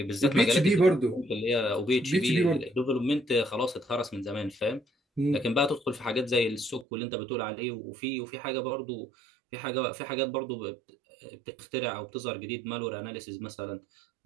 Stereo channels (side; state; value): left; drops out; at 6.9 s